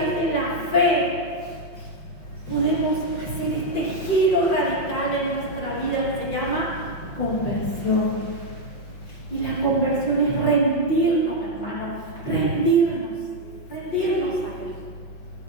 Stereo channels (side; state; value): right; late; 5.6 ms